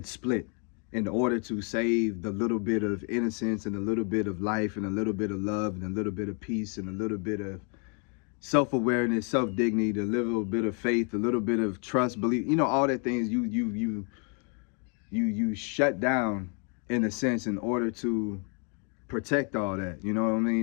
split in order to save the little bit of innocence and a little bit of life and a little bit of love and a little bit of peace and a little bit of self-awareness, self-dignity, a little bit of faith, a little bit of trust, belief, you know, all that things you shut down in a sense in order to protect all that, you know what I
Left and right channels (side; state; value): right; quieter; 37.7 dB